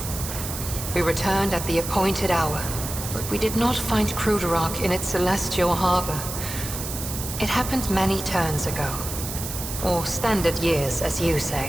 We returned at the appointed hour, but we did not find Kruderok in its celestial harbor. It happened many turns ago, or standard years, as you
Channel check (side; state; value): right; noise; hiss, 7 dB below the sound